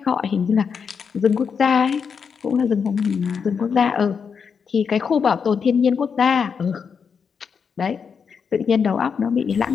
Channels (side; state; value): right; quieter; 6.3 dB